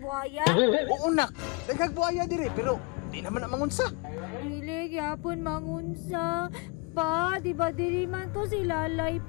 Oo nak, daghag buhaya diri pero di naman na mangunsa. Dili gyapon mangunsa. Pa, di ba dili man to si Lalay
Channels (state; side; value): quieter; right; 29.7 dB